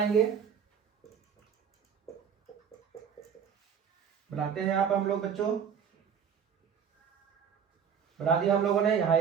बनाते हैं यहाँ पे हम लोग बच्चों, बना दिया हम लोगों ने। यहाँ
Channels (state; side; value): quieter; left; 7.5 dB